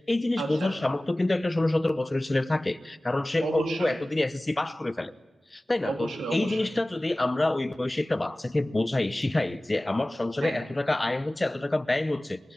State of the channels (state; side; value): normal; both; correlation 0.98